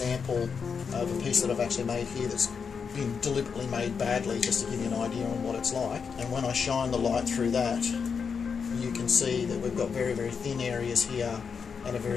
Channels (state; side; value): quieter; right; 6.0 dB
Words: of a piece that I've actually made here that's been deliberately made badly, just to give you an idea on what it's like. And when I shine the light through that, you can see that we've got very, very thin areas here and a